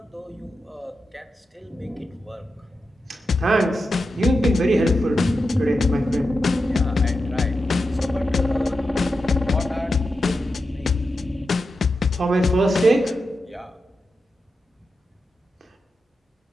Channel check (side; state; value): both; normal; correlation 0.89